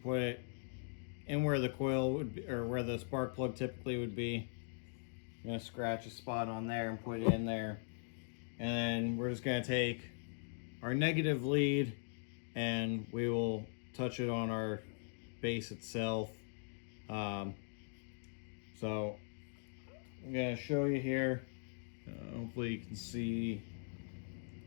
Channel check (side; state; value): right; silent; digital silence